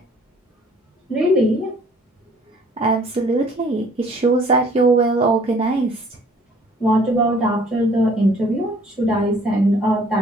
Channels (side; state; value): both; normal; correlation 0.56